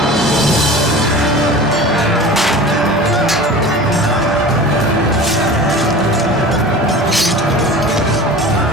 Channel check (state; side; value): normal; both; correlation 0.37